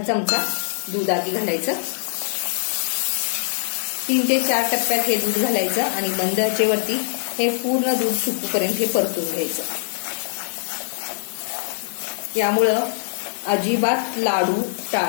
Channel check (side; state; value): right; silent; 56 dB below the other